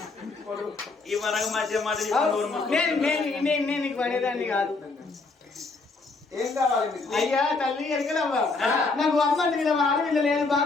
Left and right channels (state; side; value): quieter; right; 3.8 dB